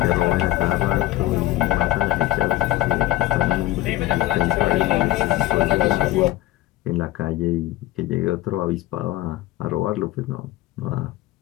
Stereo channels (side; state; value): right; quieter; 16.0 dB